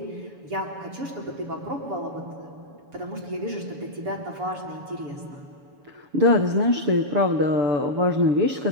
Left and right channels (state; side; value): late; left; 7.1 ms